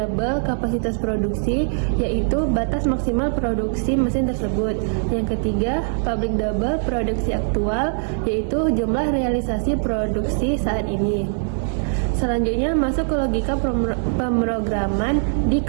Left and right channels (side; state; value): left; silent; digital silence